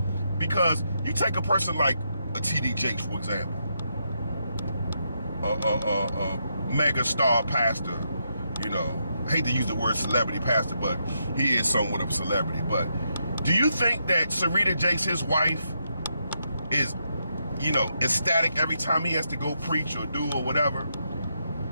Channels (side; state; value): both; inverted; correlation -0.81